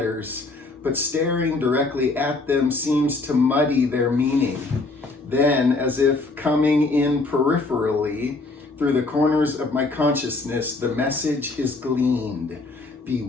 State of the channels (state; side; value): quieter; right; 3.4 dB